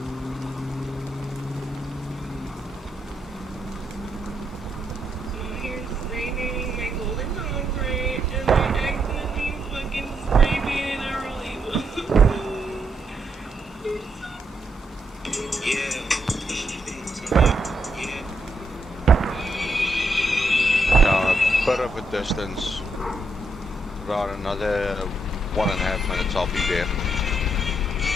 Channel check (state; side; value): normal; both; correlation 0.80